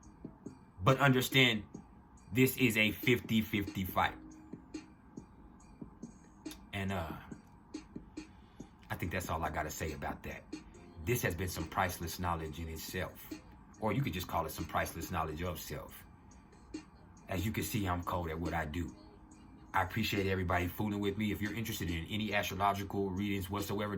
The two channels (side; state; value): both; identical; correlation 1.00